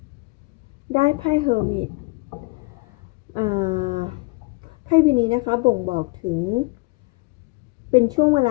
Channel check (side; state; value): right; quieter; 27.0 dB